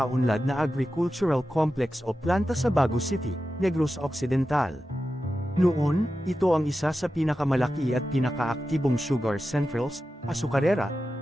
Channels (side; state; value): both; normal; correlation 0.92